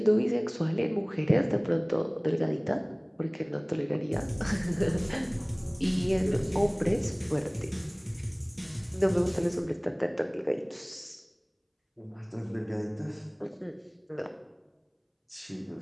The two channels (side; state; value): both; identical; correlation 1.00